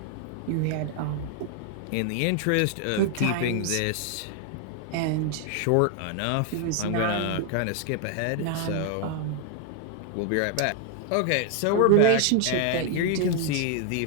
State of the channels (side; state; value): both; different; correlation 0.00